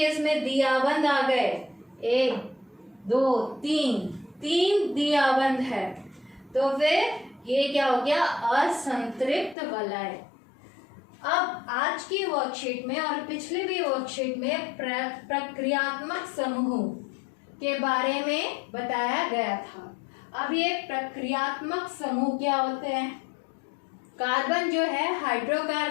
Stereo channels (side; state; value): right; drops out; at 9.6 s